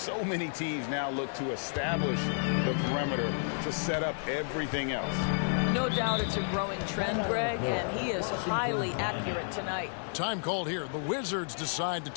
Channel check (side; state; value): right; silent; digital silence